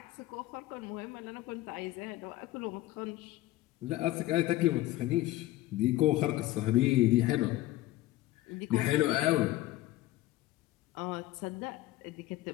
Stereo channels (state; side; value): quieter; right; 16.4 dB